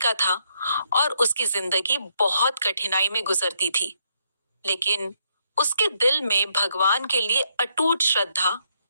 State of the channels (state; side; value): inverted; both; correlation -0.75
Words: था और उसकी जिंदगी बहुत कठिनाई में गुजरती थी। लेकिन उसके दिल में भगवान के लिए अटूट श्रद्धा